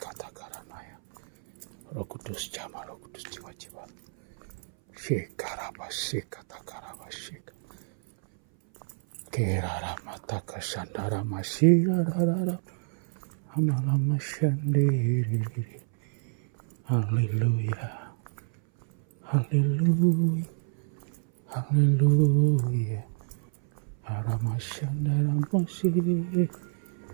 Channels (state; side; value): silent; left; 59 dB below the other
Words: karanaya. Roh Kudus jama, Roh Kudus jiwa-jiwa. Shekara masih kata karawashika. Kerara mataka sandara masih rara. Amalama shandiri. Haleluya. Haleluya. Haleluya. Arama shandara masih.